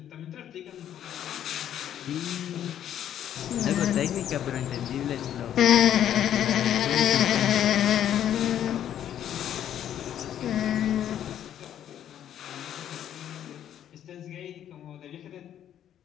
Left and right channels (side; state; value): right; quieter; 10.5 dB